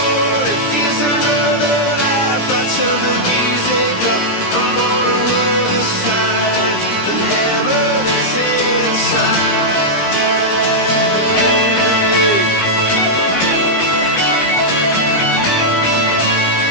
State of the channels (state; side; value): late; right; 17 ms